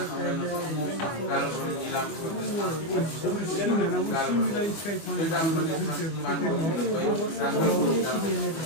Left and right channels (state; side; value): late; right; 25 ms